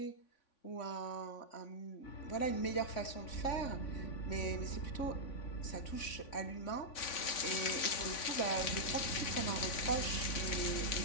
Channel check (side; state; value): right; late; 3.5 ms